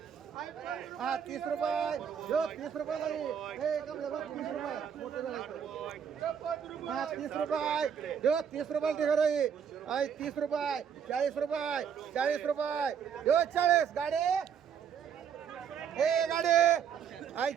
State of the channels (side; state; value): left; quieter; 7.8 dB